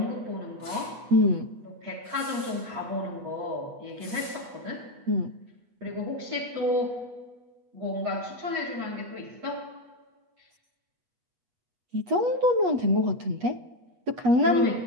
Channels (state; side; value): late; left; 8.2 ms